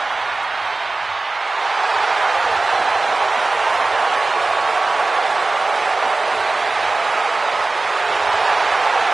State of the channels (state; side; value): quieter; left; 3.4 dB